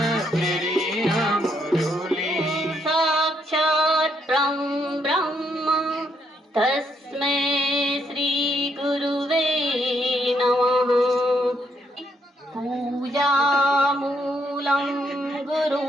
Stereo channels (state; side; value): normal; both; correlation 0.75